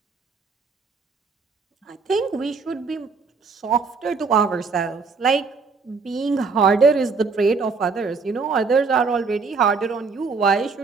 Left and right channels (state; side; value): quieter; left; 4.7 dB